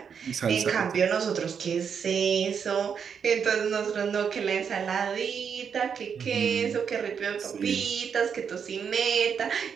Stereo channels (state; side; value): quieter; left; 7.0 dB